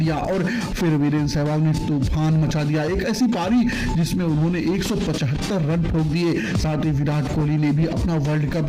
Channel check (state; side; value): identical; both; correlation 1.00